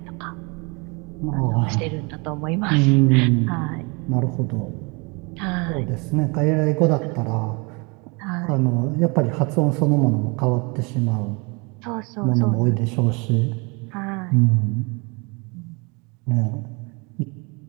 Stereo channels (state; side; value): quieter; left; 29.9 dB